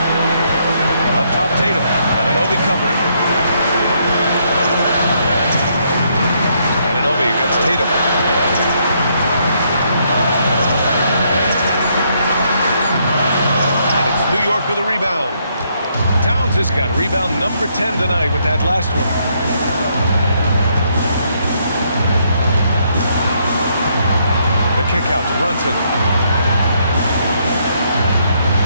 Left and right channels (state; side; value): inverted; both; correlation -0.73